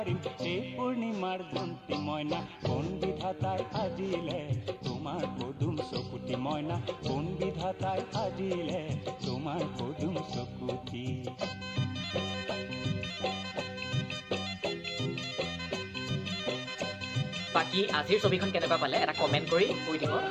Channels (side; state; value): both; identical; correlation 1.00